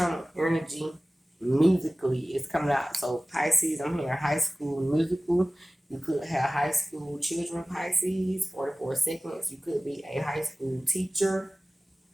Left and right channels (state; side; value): normal; both; correlation 0.97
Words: energy musically is coming out. So Pisces, I'm hearing high school musical. You could have high school children, Pisces, 44 seconds. You could be a high school teacher.